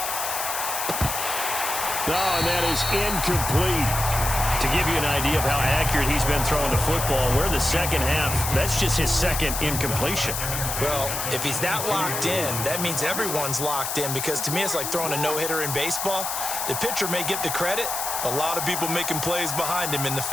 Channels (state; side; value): noise; left; hiss, 3 dB below the sound